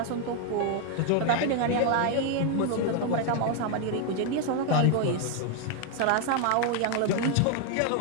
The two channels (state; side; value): different; both; correlation 0.00